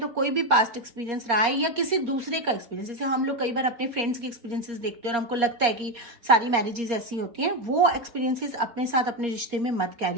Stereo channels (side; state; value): left; late; 4.3 ms